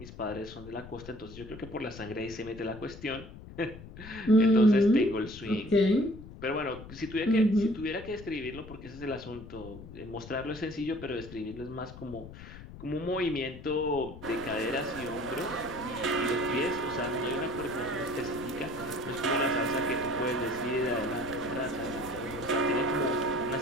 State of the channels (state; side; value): noise; left; rumble, 15 dB below the sound